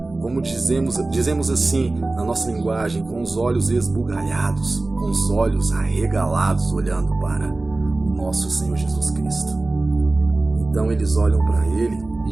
como dizemos assim na nossa linguagem, com os olhos esbugalhados, com os olhos arregalados, olhando para o nosso Senhor Jesus Cristo. Então eles olham para ele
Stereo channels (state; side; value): quieter; left; 3.1 dB